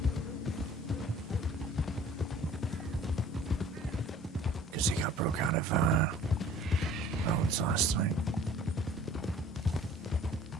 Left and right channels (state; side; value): normal; both; correlation 0.50